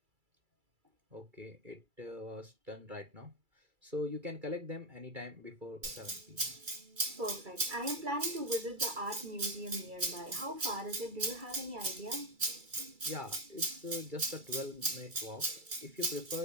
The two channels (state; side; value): late; left; 2.3 ms